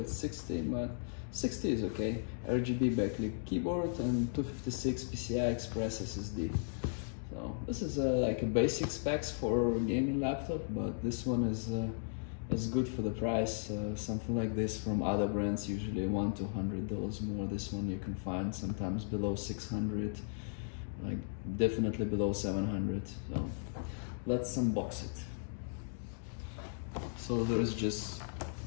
it's 60, but 60 is okay. RGB backlit keyboard and 256 PCI Express SSD. So this is like a basic specs for a gaming laptop, but this one is good for the price. Something like this from other brands usually $100 to $200 more. This one you can find sometimes below 600, like definitely below 700. So let's unbox it. So there's just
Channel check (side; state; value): right; silent; digital silence